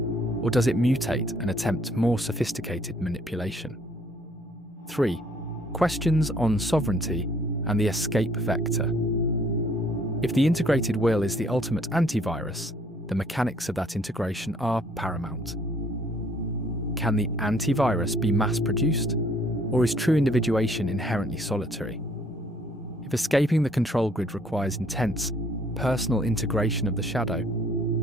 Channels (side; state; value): both; normal; correlation 0.62